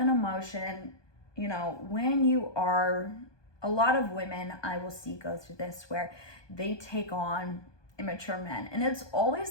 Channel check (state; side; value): late; right; 1.2 ms